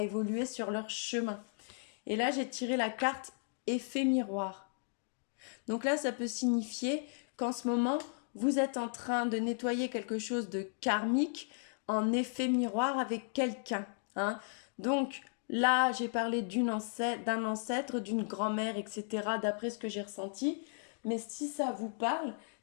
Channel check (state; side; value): silent; right; digital silence